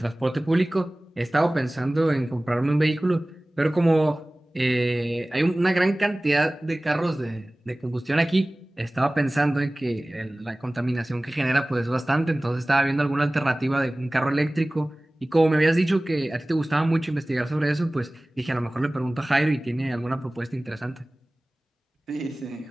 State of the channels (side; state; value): both; normal; correlation 0.98